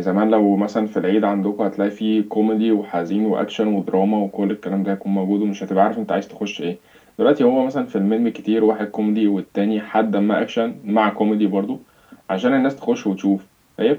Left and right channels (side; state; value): both; identical; correlation 1.00